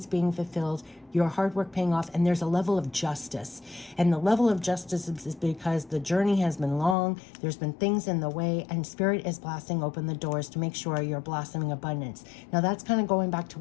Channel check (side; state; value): right; drops out; at 7.0 s